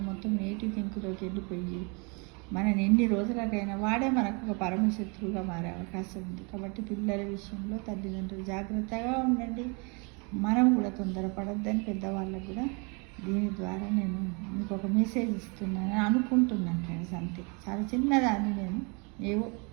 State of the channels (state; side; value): quieter; left; 32.1 dB